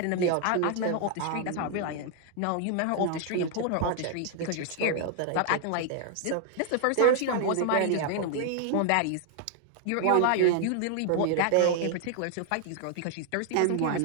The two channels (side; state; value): both; different; correlation 0.00